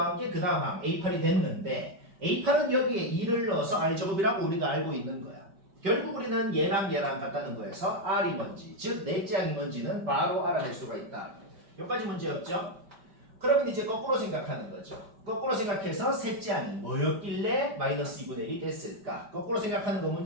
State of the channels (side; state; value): left; late; 5.1 ms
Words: 게 그 다음 항 A8이 됐는데 A8은 여기에 2를 넣어서 R제곱이라고 우리가 알고 있는 거야. 결국 우리는 얘랑 같다는 거에서 R이 뭔지 즉 넷째 항이 뭔지는 바로 알아낼 수가 있다. 여기까지 문제였죠? 그러면 이제 거꾸로 생각하는 거죠. 거꾸로 생각해서 셋째 항이 뭐였길래 마이너스 2분의 1이 됐을까? 거꾸로 생각하는 거